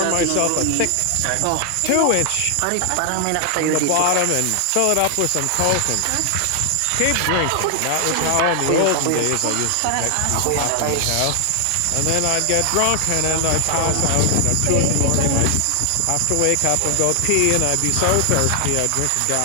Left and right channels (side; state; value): both; different; correlation 0.00